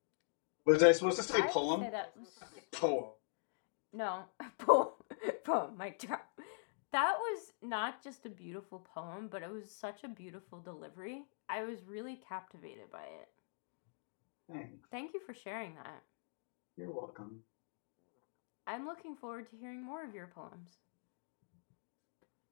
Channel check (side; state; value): right; silent; digital silence